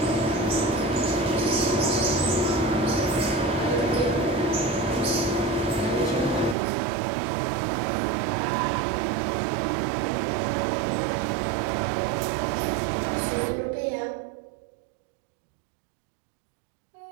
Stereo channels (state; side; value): drops out; left; at 6.6 s